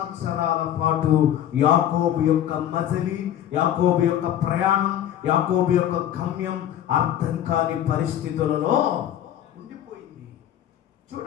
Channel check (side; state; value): right; quieter; 11.2 dB